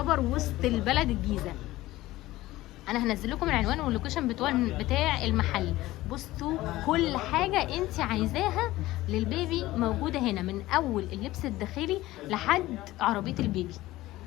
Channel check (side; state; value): right; quieter; 17.2 dB